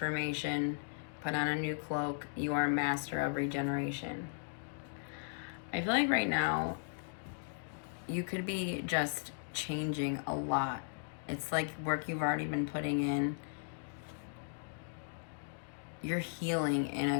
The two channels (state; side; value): silent; right; digital silence